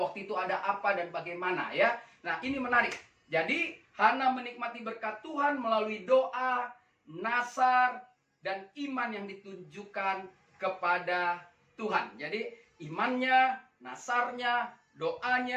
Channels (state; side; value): identical; both; correlation 1.00